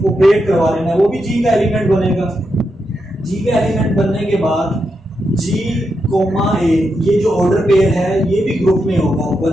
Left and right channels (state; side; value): normal; both; correlation 0.85